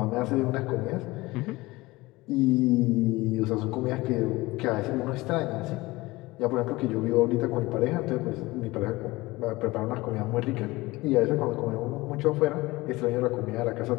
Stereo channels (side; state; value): right; quieter; 20.7 dB